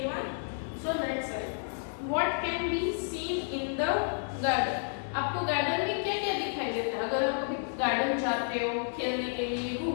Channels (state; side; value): silent; right; digital silence